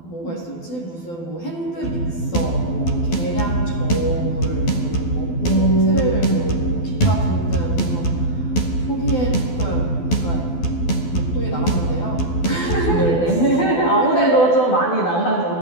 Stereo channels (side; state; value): right; late; 12 ms